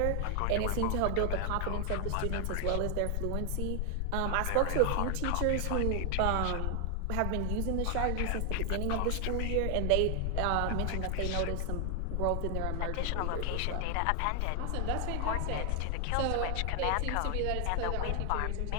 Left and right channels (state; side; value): different; both; correlation 0.00